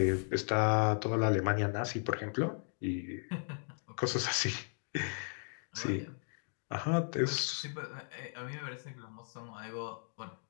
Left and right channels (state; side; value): silent; right; 54 dB below the other